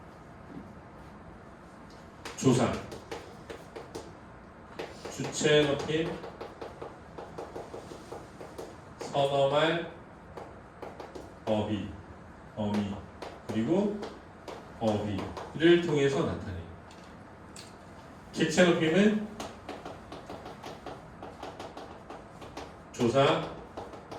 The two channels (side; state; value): both; identical; correlation 1.00